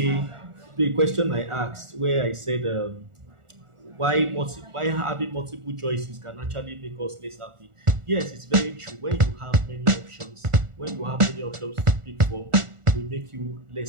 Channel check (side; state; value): left; late; 1.4 ms